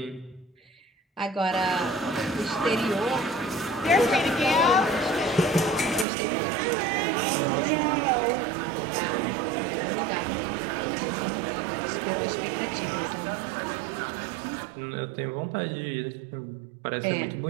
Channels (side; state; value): left; drops out; at 6.1 s